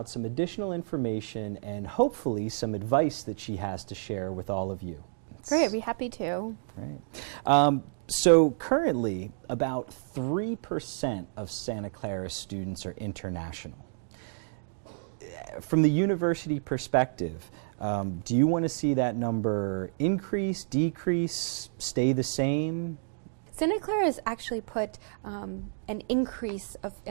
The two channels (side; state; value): left; silent; digital silence